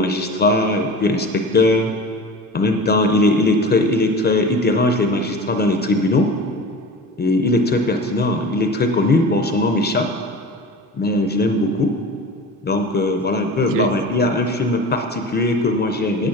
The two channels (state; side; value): normal; both; correlation 0.35